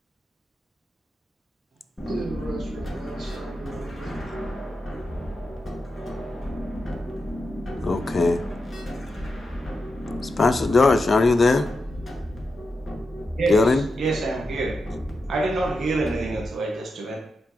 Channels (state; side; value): normal; both; correlation 0.88